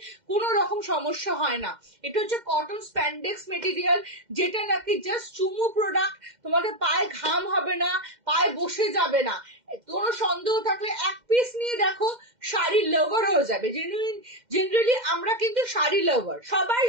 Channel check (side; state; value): left; late; 2.1 ms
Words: কোনো রকম সমস্যা হয় না। এটা হচ্ছে কটন স্প্যান্ডেক্স মেটেরিয়াল, যেটা নাকি জাস্ট চুমু প্রোডাক্ট, তোমাদের পায়ে ঘাম হবে না, পায়ে বসে যাবে না, কোনো সন্দেহ থাকলে এক পিস নিয়ে দেখো, শাড়ি লাভার হয়ে যাবে। জেনারেলি আমরা কিন্তু শাড়ি লাভার, সবাই